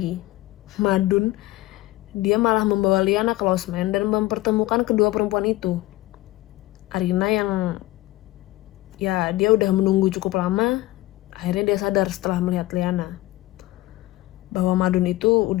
Madun dia malah membawa Liana ke losmen dan mempertemukan kedua perempuan itu. Arina yang ya dia udah menunggu cukup lama, akhirnya dia sadar setelah melihat Liana bahwa Madun itu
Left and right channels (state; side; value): quieter; right; 18.0 dB